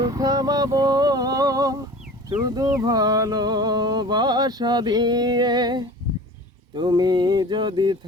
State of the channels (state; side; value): normal; both; correlation 0.40